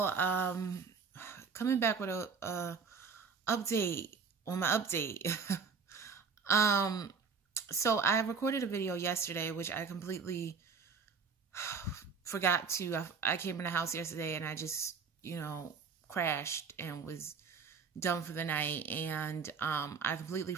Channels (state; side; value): quieter; left; 5.5 dB